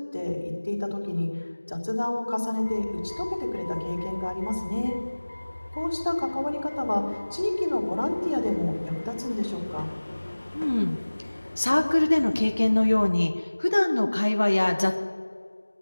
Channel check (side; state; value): both; inverted; correlation -1.00